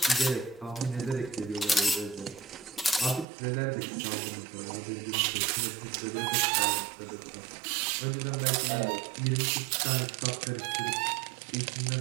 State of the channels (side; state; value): left; drops out; at 3.2 s